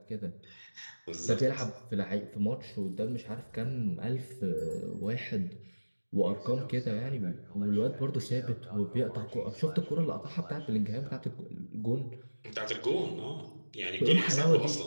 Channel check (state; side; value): inverted; both; correlation -1.00